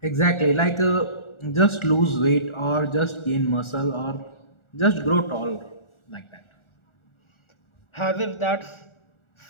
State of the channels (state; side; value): late; right; 1.4 ms